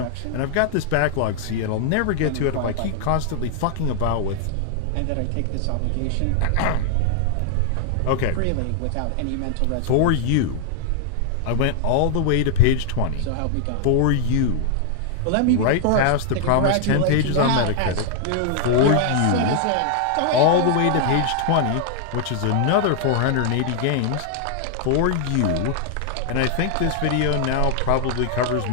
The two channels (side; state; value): both; different; correlation 0.00